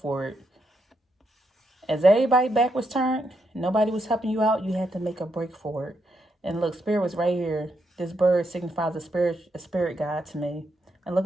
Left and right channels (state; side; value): normal; both; correlation 0.80